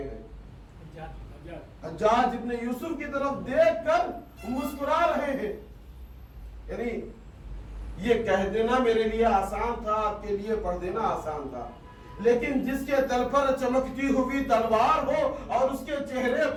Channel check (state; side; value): identical; both; correlation 1.00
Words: ہیں، حجاج ابن یوسف کی طرف دیکھ کر مسکرا رہے ہیں۔ یعنی یہ کہہ دینا میرے لیے آسان تھا، آپ کے لیے پڑھ دینا آسان تھا، لیکن جس کے تل پر چمکتی ہوئی تلوار ہو اور اس کے چہرے